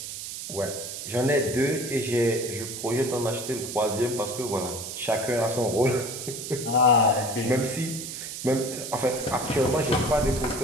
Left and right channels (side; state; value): right; noise; hiss, 8 dB below the sound